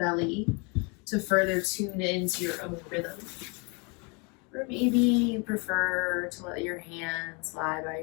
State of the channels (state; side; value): quieter; right; 32.0 dB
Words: to further tune into your own rhythm. Or maybe you prefer to let your hands lie by